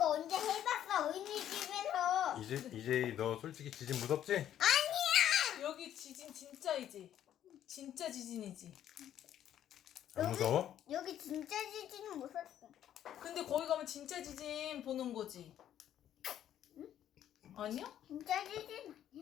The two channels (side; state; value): right; quieter; 10.9 dB